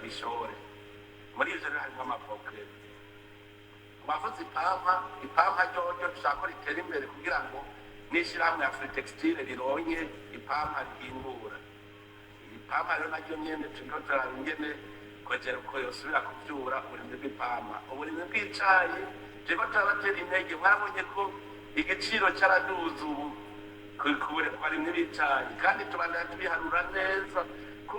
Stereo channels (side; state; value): both; identical; correlation 1.00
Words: Muri ivyo rero harimwo amavoka. Bavuze ipampa ryoryo dushaka ko ritera imbere kugira ngo n'ishirahamwe ya Free Textile rironke ipampa rihingura. Ipampa rero naryo nyene turiko turaraba ingene kongera uko yosubira kuvyura uburimyi bw'ipampa. Uburimyi bw'icayi turiko turabatera intege, mwarabonye ko igiciro caraduze ubu ku barimyi b'icayi, kandi tubandanya tubiharura neza